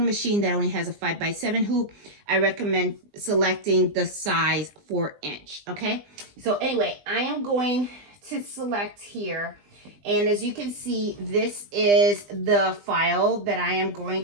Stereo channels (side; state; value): left; late; 20 ms